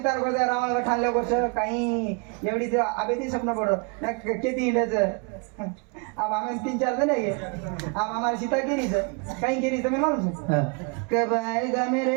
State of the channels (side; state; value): left; quieter; 33.5 dB